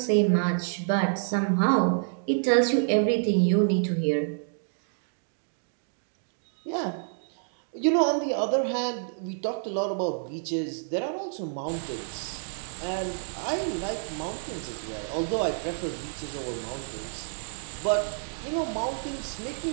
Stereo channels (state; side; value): silent; left; digital silence